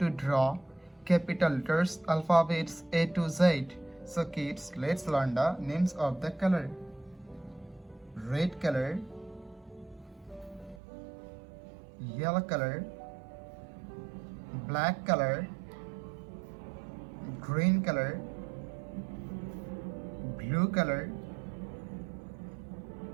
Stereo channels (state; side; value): drops out; left; at 10.8 s